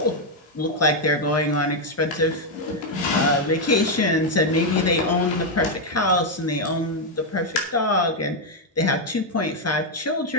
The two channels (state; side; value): normal; both; correlation 0.01